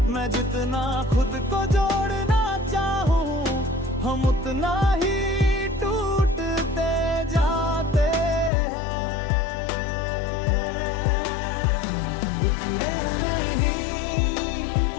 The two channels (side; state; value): right; drops out; at 8.5 s